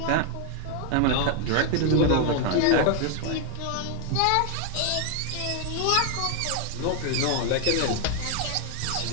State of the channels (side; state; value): both; different; correlation 0.00